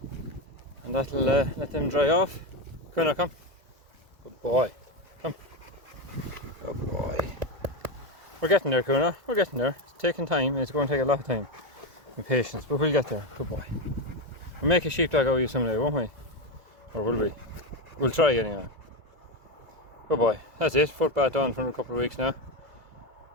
And that'll let them dry off. Kuna, come. Good boy. Come. Good boy. We're getting there, Kuna. We're getting there. Taking time. It's going to take a lot of time and patience, but we'll get there. Good boy. We'll make a sheepdog out of you someday, won't we? Or will we? We'll try anyway. Good boy. That's it. Footbath on for a couple of weeks now.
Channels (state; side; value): late; left; 2.0 ms